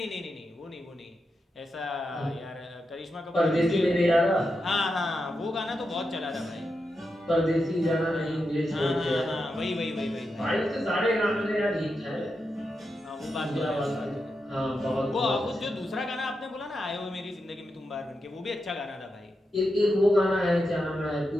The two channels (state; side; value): normal; both; correlation 0.87